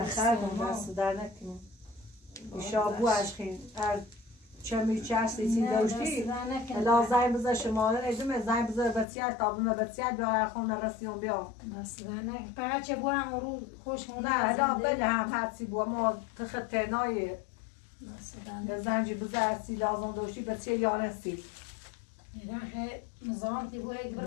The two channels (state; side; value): drops out; right; at 9.1 s